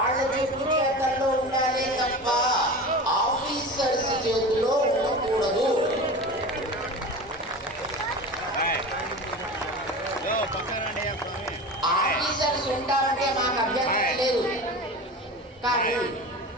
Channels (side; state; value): both; normal; correlation 0.31